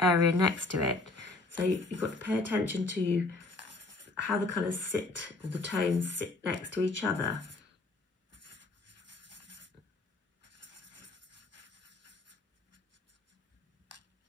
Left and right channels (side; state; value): right; quieter; 3.2 dB